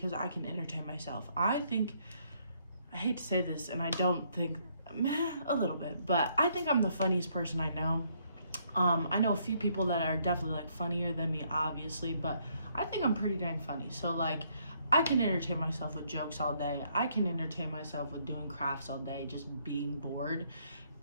I can entertain myself. I hate to say this and I don't think, a little bit, but I think I'm the funniest person I know. I know a few people that are definitely like funnier than me, obviously, but I think I'm pretty dang funny. So like, I can entertain myself with jokes all day. I can entertain myself with doing crafts all day, just being bored.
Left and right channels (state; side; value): inverted; both; correlation -0.70